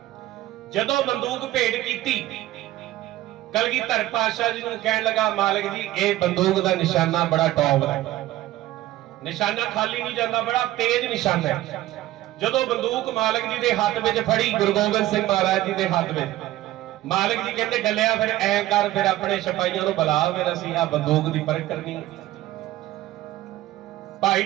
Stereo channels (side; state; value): left; quieter; 15.3 dB